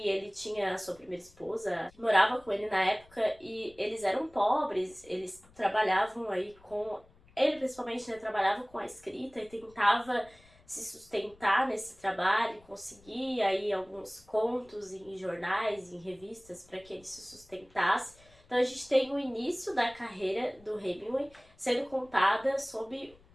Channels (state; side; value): noise; left; rumble, 27 dB below the sound